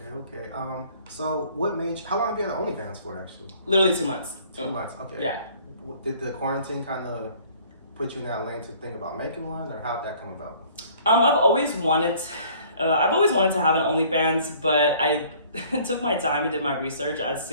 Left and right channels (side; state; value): both; inverted; correlation -0.55